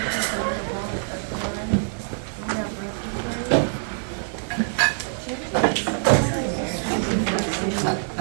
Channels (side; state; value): left; silent; digital silence